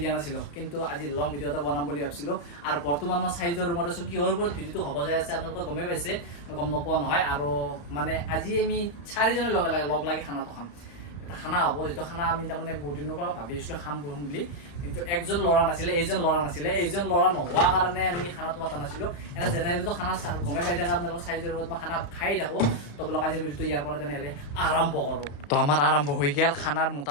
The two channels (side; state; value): right; late; 35 ms